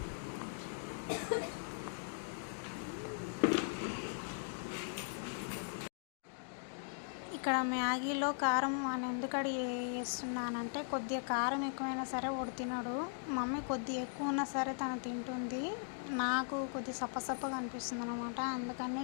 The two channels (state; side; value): silent; right; digital silence